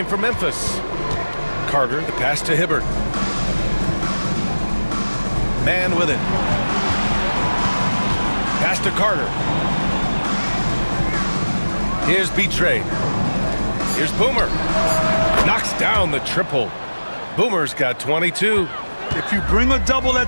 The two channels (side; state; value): both; inverted; correlation -1.00